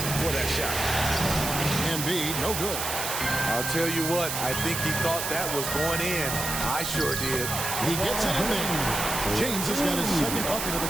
for that shot. Embiid, no good. I'll tell you what, I think he thought that was going in. I sure did. He gets it in there. James has got his second bucket of the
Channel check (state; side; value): noise; right; hiss, 3 dB below the sound